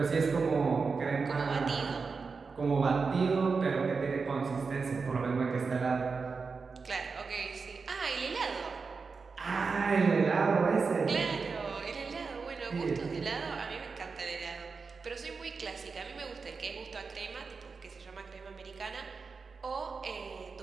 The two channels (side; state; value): left; quieter; 4.8 dB